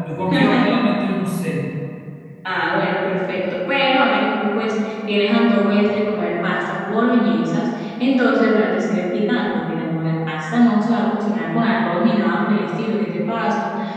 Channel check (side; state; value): both; identical; correlation 1.00